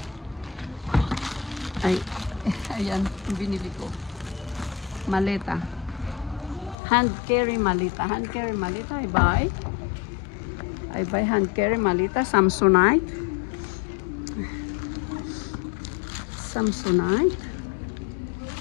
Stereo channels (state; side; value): drops out; right; at 6.8 s